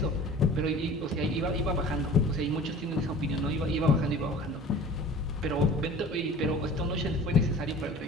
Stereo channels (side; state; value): both; normal; correlation 0.42